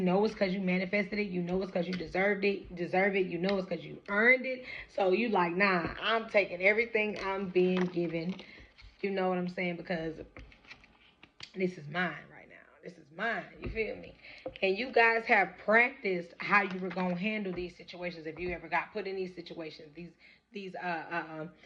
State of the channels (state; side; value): identical; both; correlation 1.00